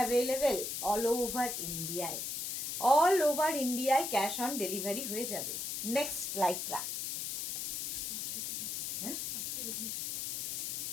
all over ইন্ডিয়ায়, অল ওভার ইন্ডিয়ায় ক্যাশ অন ডেলিভারি হয়ে যাবে। নেক্সট লাইকরা,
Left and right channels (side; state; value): left; noise; hiss, 3 dB below the sound